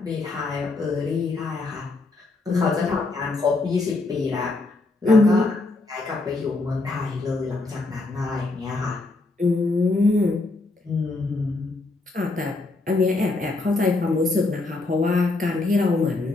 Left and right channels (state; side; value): quieter; right; 3.3 dB